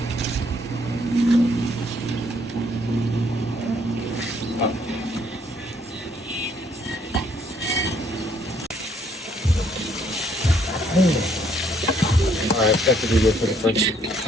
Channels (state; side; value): normal; both; correlation 0.67